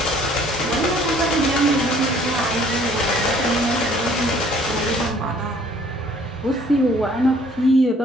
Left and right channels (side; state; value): both; normal; correlation 0.58